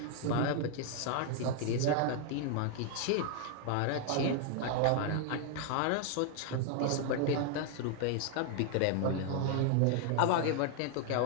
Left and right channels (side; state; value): both; different; correlation 0.00